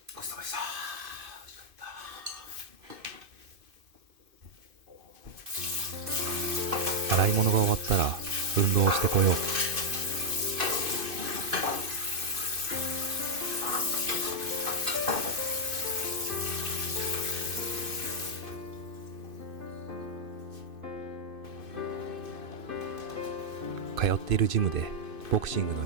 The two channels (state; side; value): late; left; 2.5 ms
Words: ごちそうさまでした。美味しかった。洗い物が終わったら運動をしてこよう。通っているジムでボクシングの